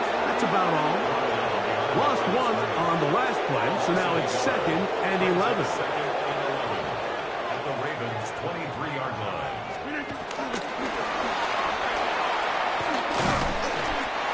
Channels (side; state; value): both; identical; correlation 1.00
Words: That's about all. Lost one on the last play, so now it's 2nd and 11. At the Ravens' 23-yard line.